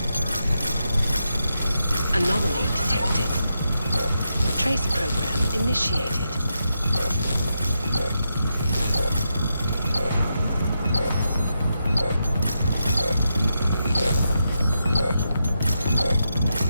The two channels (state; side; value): inverted; both; correlation -0.85